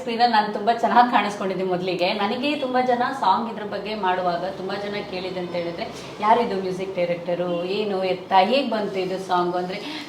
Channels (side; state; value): both; identical; correlation 1.00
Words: ನಾನು ತುಂಬ ಚೆನ್ನಾಗಿ ಕಾಣಿಸ್ಕೊಂಡಿದ್ದೆ. ಮೊದಲಿಗೆ ನನಗೆ ತುಂಬ ಜನ ಸಾಂಗ್ ಇದ್ರ ಬಗ್ಗೆ ಮಾಡುವಾಗ ತುಂಬ ಜನ ಕೇಳಿದೆ ಅಂತ ಹೇಳಿದ್ರೆ, ಯಾರಿದು ಮ್ಯೂಸಿಕ್ ಡೈರೆಕ್ಟರು, ಏನು ಎತ್ತ, ಹೇಗೆ ಬಂತು ಇದು ಸಾಂಗು, ಅಂದರೆ